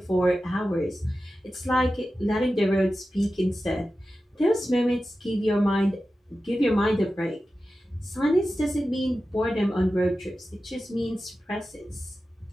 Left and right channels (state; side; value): normal; both; correlation 0.93